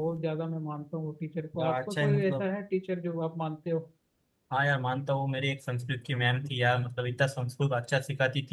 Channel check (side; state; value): both; identical; correlation 1.00